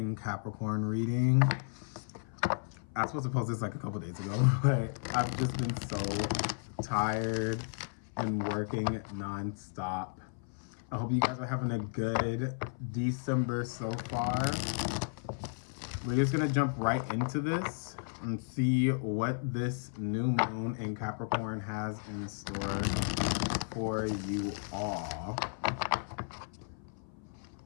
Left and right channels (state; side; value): silent; right; 55 dB below the other